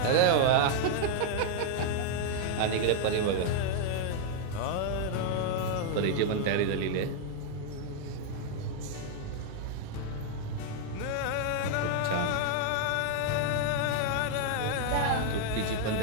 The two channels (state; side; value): different; both; correlation 0.00